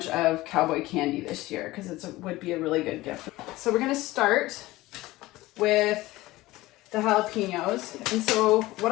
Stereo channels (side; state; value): right; quieter; 18.5 dB